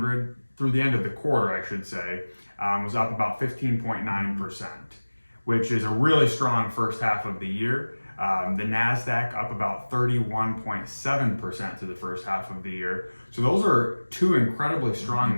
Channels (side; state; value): both; inverted; correlation -1.00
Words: through the end of the quarter, I should say, was up about 15.9%, which is a really strong first half of the year. The NASDAQ up about 31.7% to the first half of the year. So those are two incredibly strong